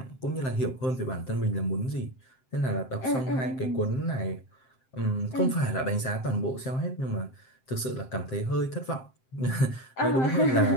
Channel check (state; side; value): late; right; 7.7 ms